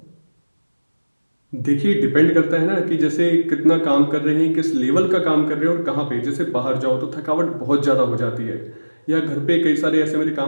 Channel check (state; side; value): inverted; both; correlation -1.00